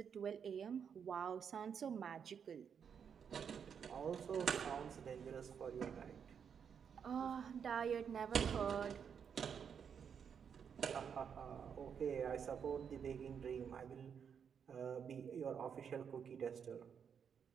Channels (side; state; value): left; quieter; 7.3 dB